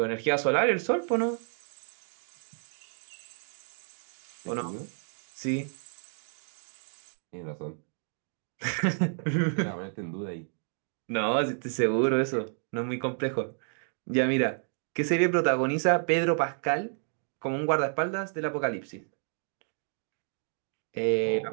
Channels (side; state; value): left; silent; 57 dB below the other